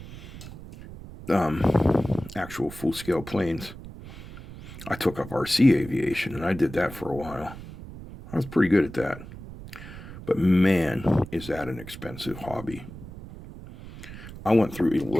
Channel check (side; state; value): right; noise; rumble, 14 dB below the sound